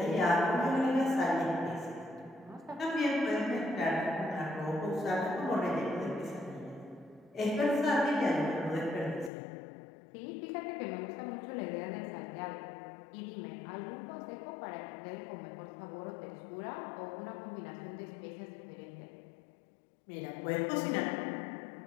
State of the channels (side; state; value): right; drops out; at 9.3 s